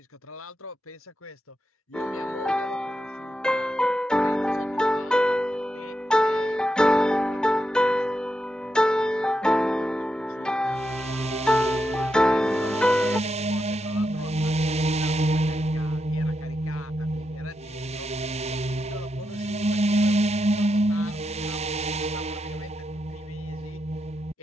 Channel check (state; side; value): normal; both; correlation 0.86